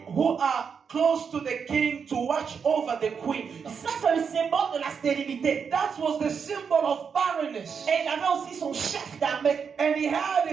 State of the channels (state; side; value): quieter; left; 6.4 dB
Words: who are close to the king to watch over the queen. Ça, c'est le symbole de la stérilité. That was the symbol of barrenness. Et il avait aussi son chef d'armée. And he had